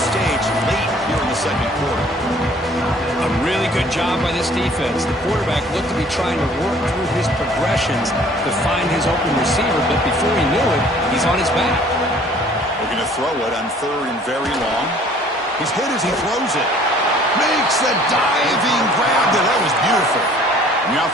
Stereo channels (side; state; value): both; normal; correlation 0.55